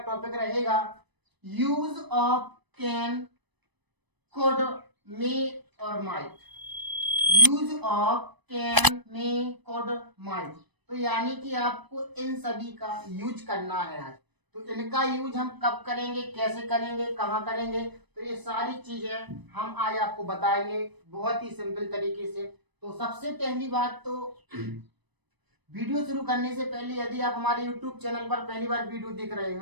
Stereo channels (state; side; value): late; left; 1.0 ms